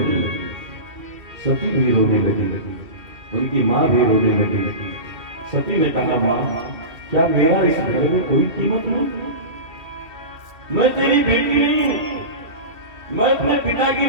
सती भी रोने लगी, उनकी मां भी रोने लगी। सती ने कहा, मां, क्या मेरा इस घर में कोई कीमत नहीं? मैं तेरी बेटी नहीं हूं, मैं अपने पिता की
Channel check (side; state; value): left; late; 2.5 ms